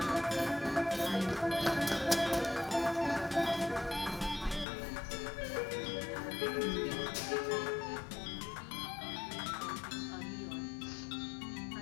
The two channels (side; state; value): right; drops out; at 4.7 s